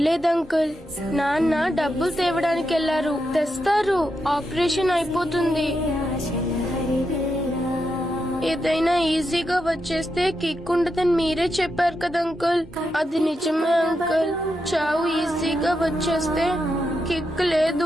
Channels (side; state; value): both; normal; correlation 0.85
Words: uncle, నాన్న డబ్బులు తేవడానికి వెళ్లారు, తెస్తారు. ఆపరేషన్ అయిపోతుంది. ఏదైనా ఈజీగా వచ్చేస్తే కిక్ ఉండదని మీరే చెప్పారు కదా అంకుల్. అది నిజమే అంకుల్. చావు ఈజీగా వచ్చేస్తే కిక్